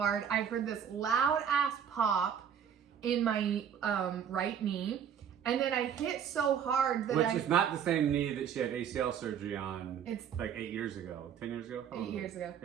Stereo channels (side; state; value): left; quieter; 8.3 dB